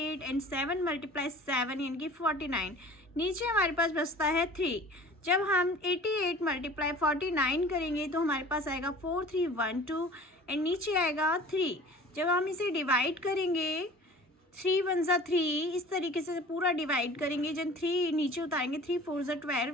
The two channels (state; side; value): normal; both; correlation 0.44